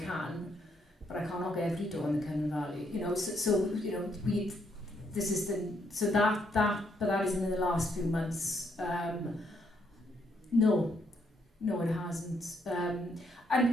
but I can't knock every door in the Cymru Valley. But that isn't in the last few months. No, it hasn't. And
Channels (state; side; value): normal; both; correlation 0.74